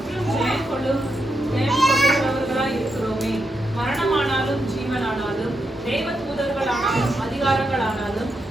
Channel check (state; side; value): normal; both; correlation 0.83